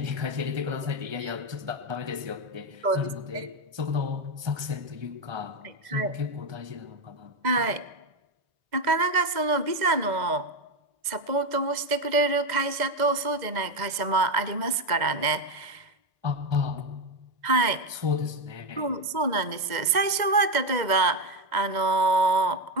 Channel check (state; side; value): late; left; 2.0 ms